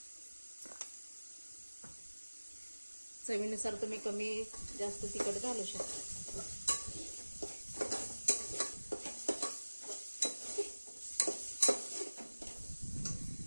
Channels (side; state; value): both; inverted; correlation -1.00